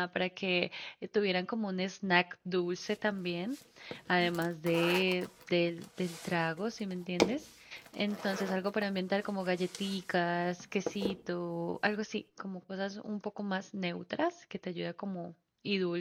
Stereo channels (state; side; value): identical; both; correlation 1.00